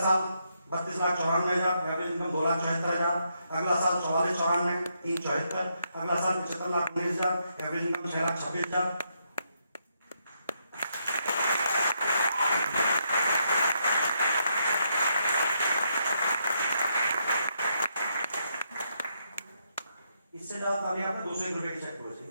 32,94,000, एवरेज इनकम 2,74,000। अगला साल 44,94, 3,74। अगला साल 75,19,000, एवरेज इनकम 6,26,000। इससे ज्यादा ताली आपने 201 रुपए की चेक करो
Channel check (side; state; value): both; inverted; correlation -0.78